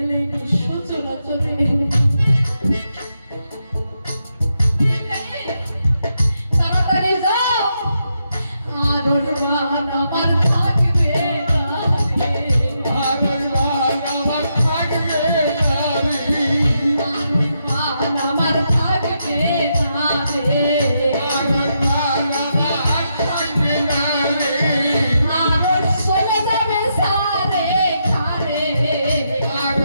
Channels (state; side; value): inverted; both; correlation -0.82